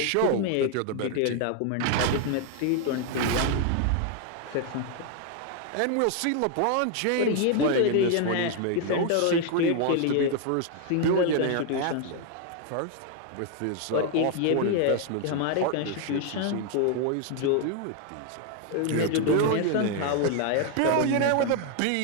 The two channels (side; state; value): both; different; correlation 0.00